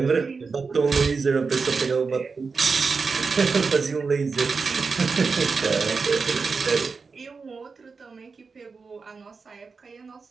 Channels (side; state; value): left; quieter; 4.7 dB